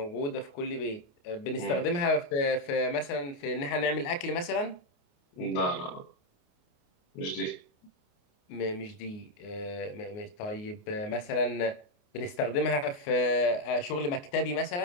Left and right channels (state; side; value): late; right; 28 ms